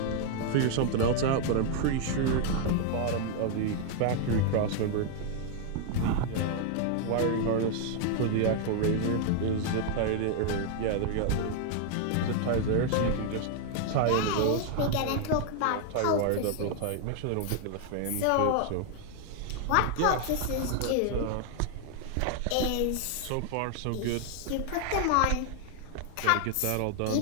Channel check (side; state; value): both; different; correlation 0.00